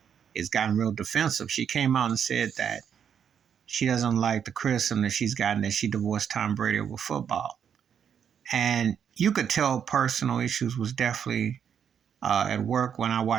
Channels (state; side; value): quieter; left; 8.0 dB